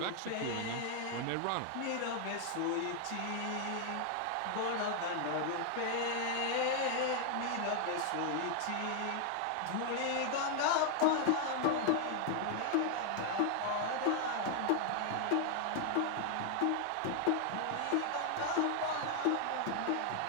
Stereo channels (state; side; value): different; both; correlation 0.00